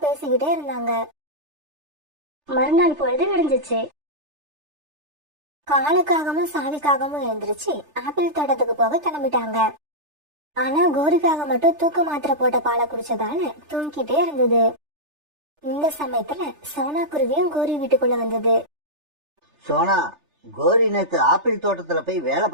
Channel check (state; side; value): late; left; 3.3 ms